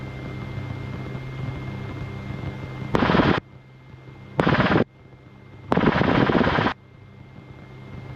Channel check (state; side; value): identical; both; correlation 1.00